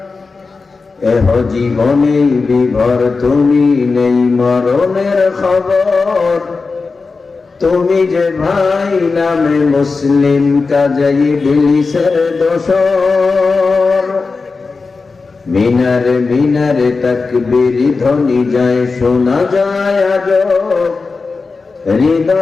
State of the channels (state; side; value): quieter; right; 4.3 dB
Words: এহ জীবনে বিভর তুমি নেই মরণের খবর তুমি যে ভাই নামে মুসলিম কাজেই ইবলিসের দোসর মিনারে মিনারে তাকবীর ধ্বনি যায় শোনা যায় আজব